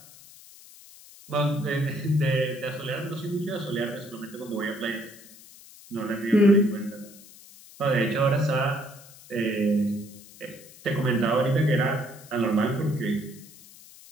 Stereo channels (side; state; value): left; noise; hiss, 21 dB below the sound